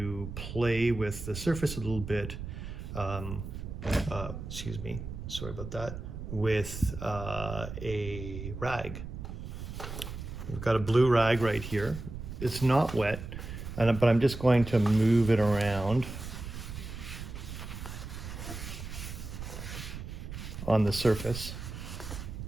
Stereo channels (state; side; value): noise; right; rumble, 8 dB below the sound